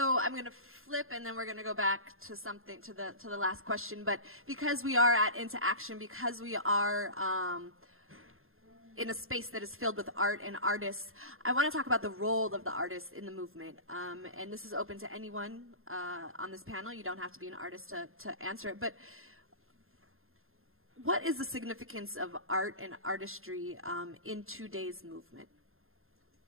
I'm going to flip, and then we're going to go back to something to the last question. But because we are at Into Action, because we are in a space that is filled with art and artists, I want to talk about the role of the artist in the movement. And this is open to anyone on this panel. You don't have to be an artist to answer it. But what is the significance of art and artistry in today's movement?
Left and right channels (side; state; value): left; late; 0.61 ms